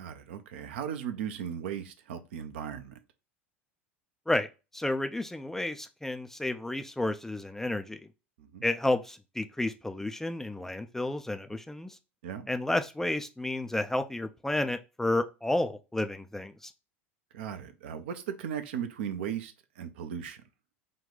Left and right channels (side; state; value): both; normal; correlation 0.81